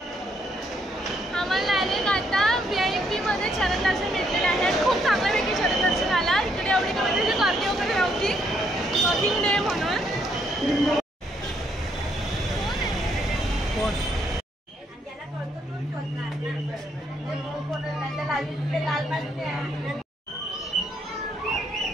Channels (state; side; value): normal; both; correlation 0.72